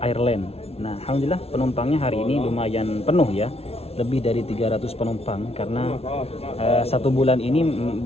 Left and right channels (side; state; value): right; late; 0.30 ms